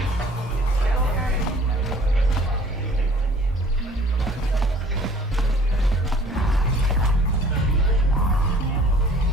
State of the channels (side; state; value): both; normal; correlation 0.52